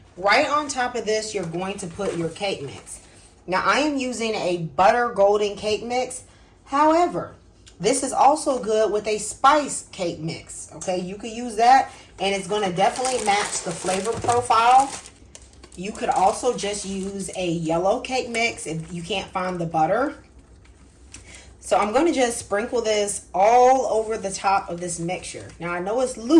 Right on top of this, you're going to put your cake mix. Now, I am using a butter golden cake mix. However, this is also good with a spice cake mix. Okay, you could use that and it's going to definitely match the flavor profile. You could also just use a yellow cake mix if you can't find the butter. So I'm going to just sprinkle this all over the top of this mixture. Now I know it's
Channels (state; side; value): identical; both; correlation 1.00